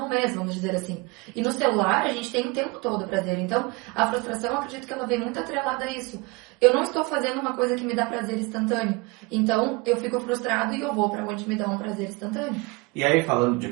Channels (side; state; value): left; quieter; 26.3 dB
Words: um mês, vamos dizer assim. E no celular, a gente tem o tempo todo o prazer. Então, a frustração, eu acredito que ela vem muito atrelada a isso. Eu não estou fazendo uma coisa que me dá prazer instantâneo. Então, eu fico frustrado e eu vou para onde me dá um prazer instantâneo. E aí, falando de